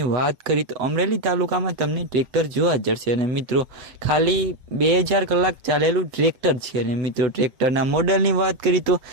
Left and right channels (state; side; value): late; left; 7.7 ms